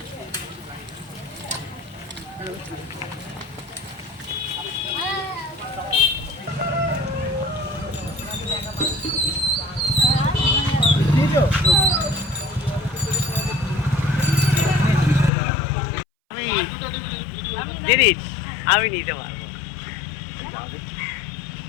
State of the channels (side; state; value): right; drops out; at 15.3 s